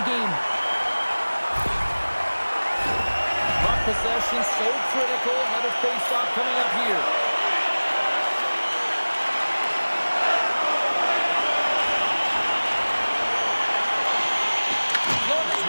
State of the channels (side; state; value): both; inverted; correlation -1.00